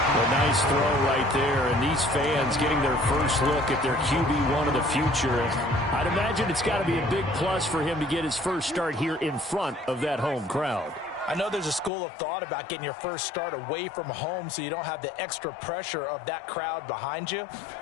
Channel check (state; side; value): drops out; right; at 11.9 s